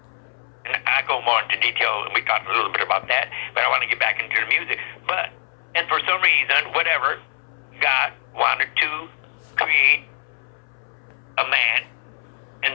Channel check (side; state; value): right; silent; 63 dB below the other